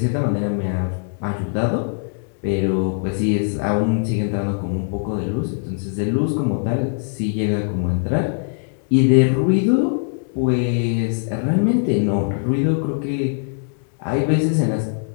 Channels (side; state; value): right; silent; digital silence